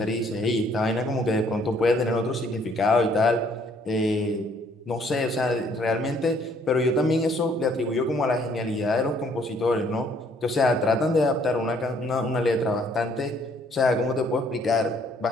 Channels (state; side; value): normal; both; correlation 0.64